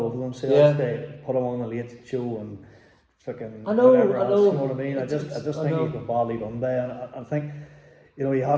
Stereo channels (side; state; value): both; identical; correlation 1.00